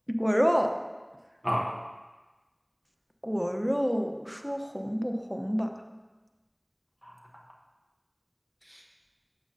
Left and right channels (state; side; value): identical; both; correlation 1.00